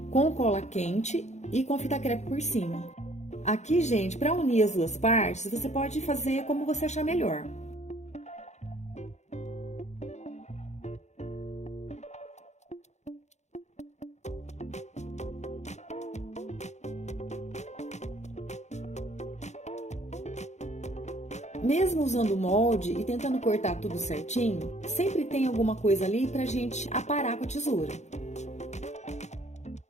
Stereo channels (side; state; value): right; late; 0.33 ms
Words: com cola quente e com fita crepe por cima. Aqui, gente, para unir as 2 partes, você pode fazer como você achar melhor. Mesmo usando o molde e tentando cortar tudo certinho, sempre tem alguma coisa ali pra gente aparar com a tesoura.